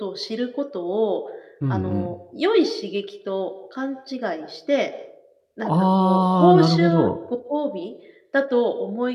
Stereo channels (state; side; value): identical; both; correlation 1.00